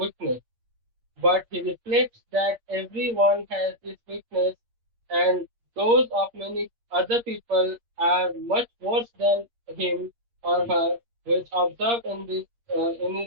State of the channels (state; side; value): late; left; 8.6 ms